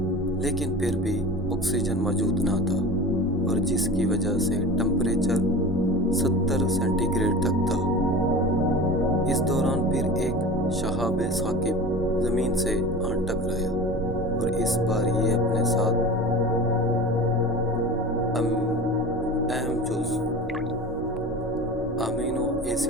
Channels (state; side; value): normal; both; correlation 0.34